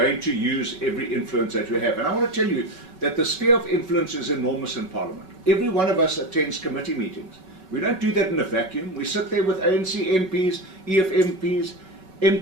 to use every influence that we have. And I want to tell you that the sphere of influence is enormous in Parliament. Every one of us attends committee meetings. We don't do that in a vacuum. We sit there with ANC MPs, EF MPs,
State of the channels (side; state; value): left; late; 5.3 ms